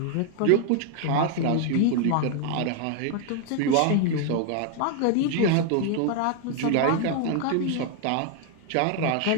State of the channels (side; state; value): both; different; correlation 0.00